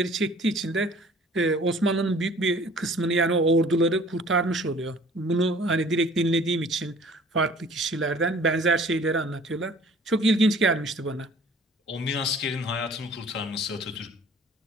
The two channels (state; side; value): normal; both; correlation 0.51